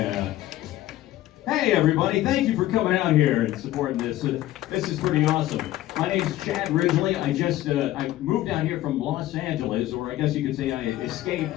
Hey, everybody. Thank you for coming out here and supporting this. This is pretty awesome. My name's Chad Ridgely. I moved out here from Los Angeles, or I guess you could say I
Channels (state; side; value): quieter; right; 14.8 dB